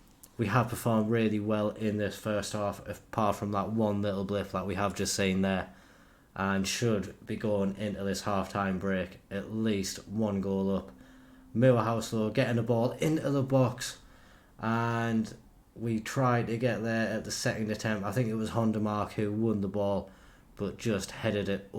We have performed really well in this first half, apart from that one little blip that we have just seen there, and should be going into this half-time break at least 1 goal up. Moorhouse though getting the ball into the box, and we tried to get there at the second attempt. I think it was Honda Mark who won the ball, but just headed it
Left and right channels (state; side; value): identical; both; correlation 1.00